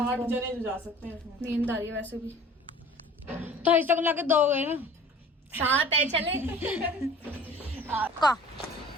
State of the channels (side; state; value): both; normal; correlation 0.46